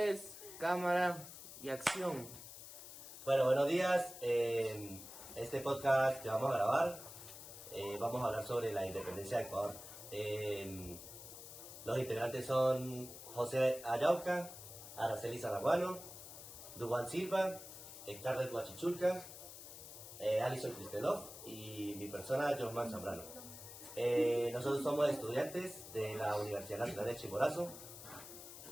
cámara y acción. Bueno, buenos días. Este podcast que vamos a grabar, vamos a hablar sobre la independencia de Ecuador. Los integrantes son José Ayauca, Araceli Zaraguano, Dubán Silva, Scarlett Huachichulca, Alison Kristelov y mi persona, Josman Zambrano. Nosotros somos estudiantes de la Universidad Nacional de Chimborazo.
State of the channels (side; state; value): left; noise; hiss, 13 dB below the sound